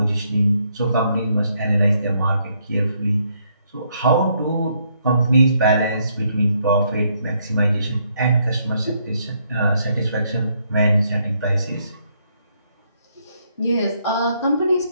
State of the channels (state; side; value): inverted; both; correlation -0.72